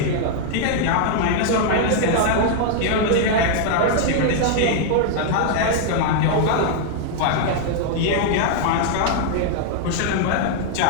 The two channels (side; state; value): both; different; correlation 0.00